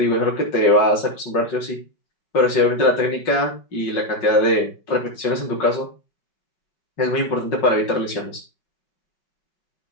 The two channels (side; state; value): right; late; 5.5 ms